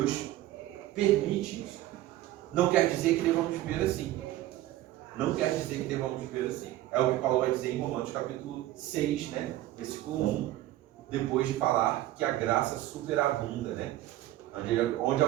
permite isso. Não quer dizer que devamos viver assim. Não quer dizer que devamos viver assim. É o que Paulo vai dizer em Romanos capítulo 6, né? Versículo 1. Depois de falar que a graça superabunda, né? Onde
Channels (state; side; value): quieter; left; 15.0 dB